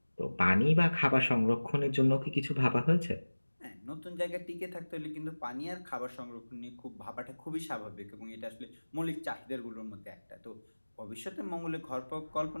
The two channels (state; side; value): inverted; both; correlation -1.00